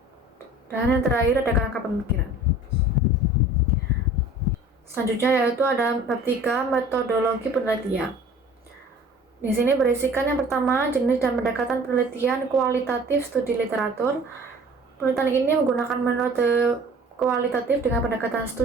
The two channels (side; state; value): both; normal; correlation 0.46